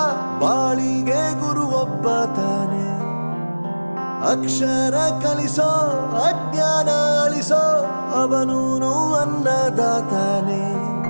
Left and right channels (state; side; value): inverted; both; correlation -1.00